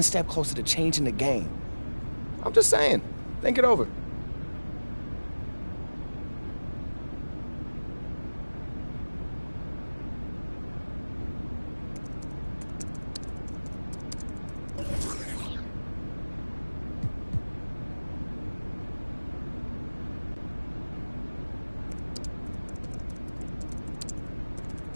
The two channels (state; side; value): inverted; both; correlation -1.00